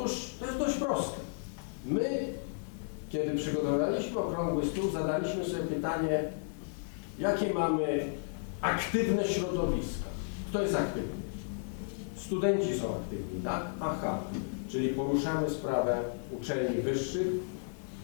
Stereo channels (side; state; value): right; silent; digital silence